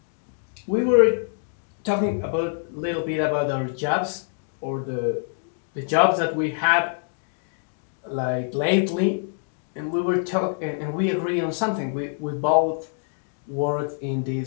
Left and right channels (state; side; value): silent; right; digital silence